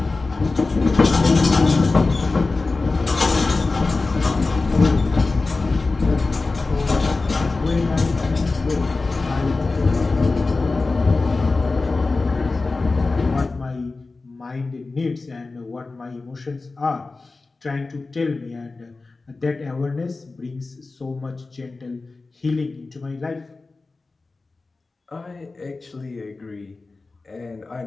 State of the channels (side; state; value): right; quieter; 3.7 dB